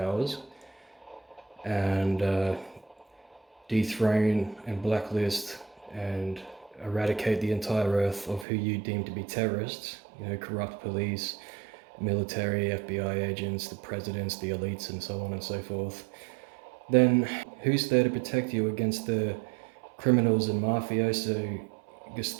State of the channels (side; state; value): left; drops out; at 8.5 s